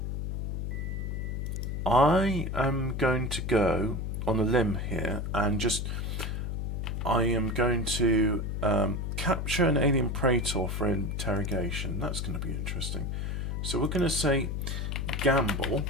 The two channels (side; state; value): left; noise; hum, 2 dB below the sound